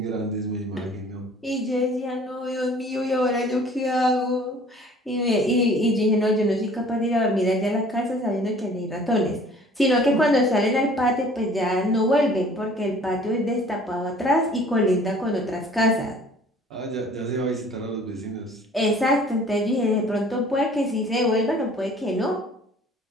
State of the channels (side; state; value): both; normal; correlation 0.52